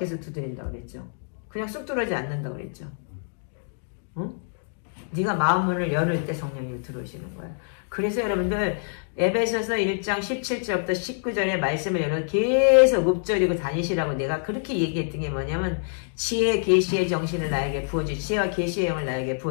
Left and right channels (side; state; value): right; silent; digital silence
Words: 두드린다고 그랬죠. 그냥 쑥 들어오지 않는다고 그랬죠. 응? 네가 마음문을 열을 때 성령님이 들어오시는 거예요. 그래서 여러분들 에베소서 1장 17절부터 19절의 말씀을 여러분 계속 읊조리고 다니시라고 내가 그렇게 얘기했던 게 뭐냐면 지혜 계시의 정신을 나에게 부어주시고 지혜와 계시의 영을 나에게